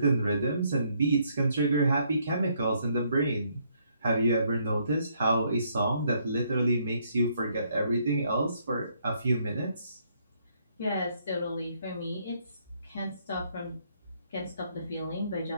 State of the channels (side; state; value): both; inverted; correlation -0.71